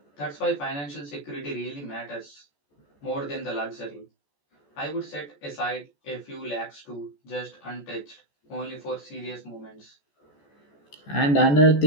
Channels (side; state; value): right; late; 14 ms